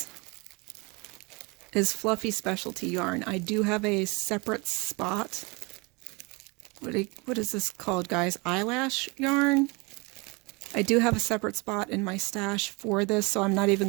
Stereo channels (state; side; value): quieter; left; 27.9 dB